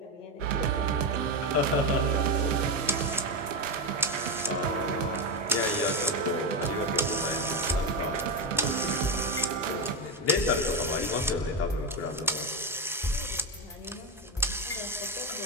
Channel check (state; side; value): normal; both; correlation 0.12